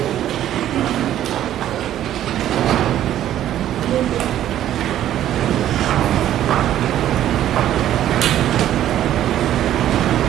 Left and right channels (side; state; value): left; quieter; 11.9 dB